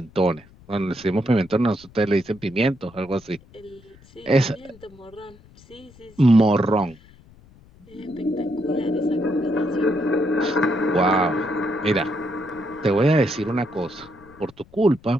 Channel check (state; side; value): noise; left; rumble, 25 dB below the sound